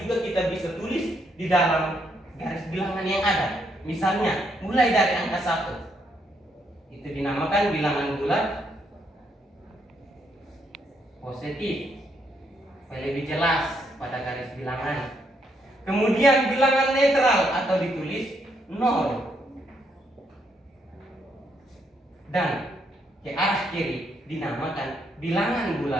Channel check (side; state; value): both; normal; correlation 0.75